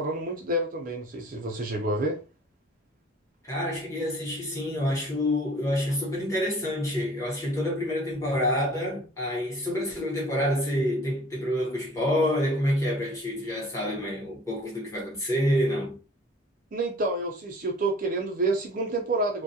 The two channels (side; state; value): both; normal; correlation 0.48